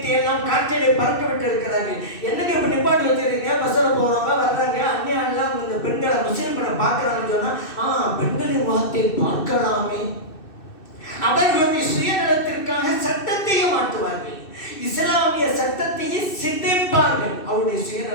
எல்லாம் காற்றிலே பறக்க விட்டு இருக்கிறார்கள். என்னங்க இப்ப நிப்பாட்டி வச்சிருக்கீங்க? பஸ்ல போறவங்க வர்றாங்க, அந்நியா எல்லாம் இந்த பெண்களை முஸ்லிம்களை பார்க்கறாங்கன்னு சொன்னா, பெண்களின் முகத்தை பார்க்கலாமே. அவர்களுடைய சுயநலத்திற்காக சட்டத்தையும் மாற்றுவார்கள், இஸ்லாமிய சட்டத்தையே சிதைப்பார்கள் அவருடைய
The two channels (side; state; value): right; late; 2.6 ms